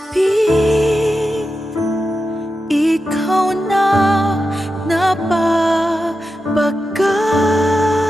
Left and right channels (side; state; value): both; normal; correlation 0.90